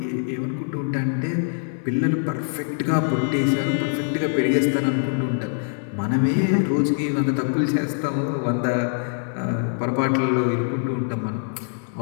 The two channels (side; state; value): right; silent; 63 dB below the other